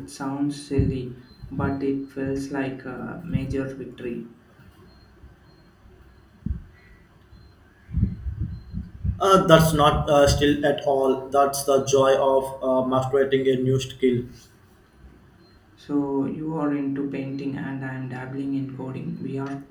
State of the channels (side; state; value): both; identical; correlation 1.00